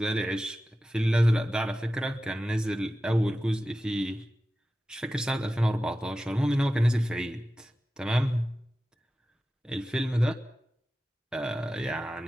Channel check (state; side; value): normal; both; correlation 0.94